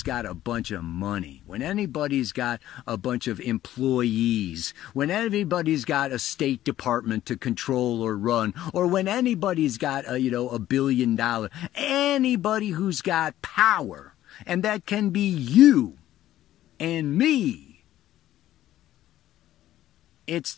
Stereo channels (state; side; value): quieter; right; 13.4 dB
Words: got a bunch of money, when anybody's got a bunch of employees, when anybody's got a State Department to control or run, or when anybody's got $1 billion, anybody who's got power, and that can be you and me. It's